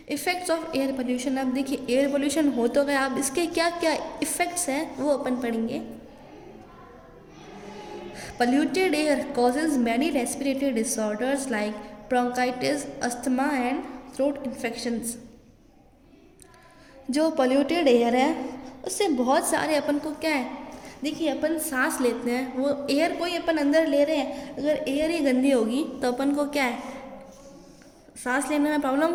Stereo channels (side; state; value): both; identical; correlation 1.00